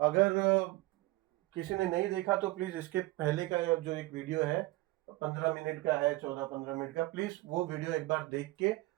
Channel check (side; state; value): left; quieter; 20.1 dB